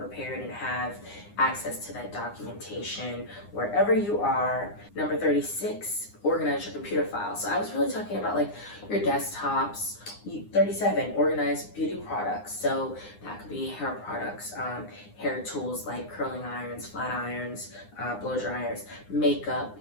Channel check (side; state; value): right; late; 9.8 ms